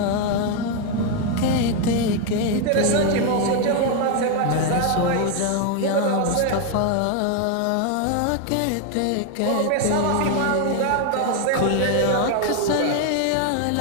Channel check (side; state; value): both; different; correlation 0.01